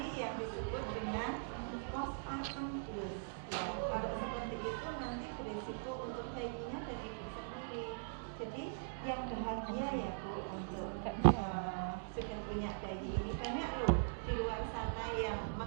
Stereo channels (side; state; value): left; silent; digital silence